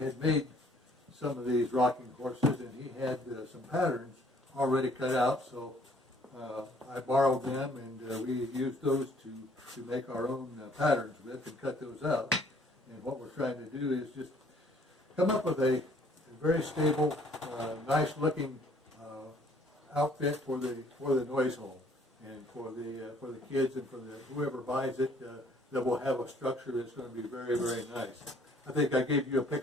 had made some of these rocking horses, and he had some patterns already cut out. So I borrowed them, and we used those to make our own patterns with and cut those out. And what we're trying to do is just come up with a very stable, nice looking outfit for the Noise Home, and for the kids and for whoever buys it, that will have a structure that's going to be very, very nice. I think I gave you a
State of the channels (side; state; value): both; normal; correlation 0.60